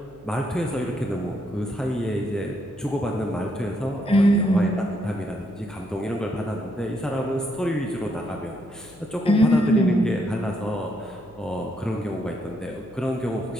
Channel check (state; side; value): noise; left; hum, 24 dB below the sound